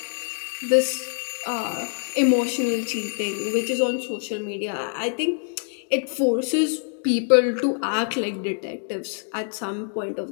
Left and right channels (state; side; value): silent; right; 60 dB below the other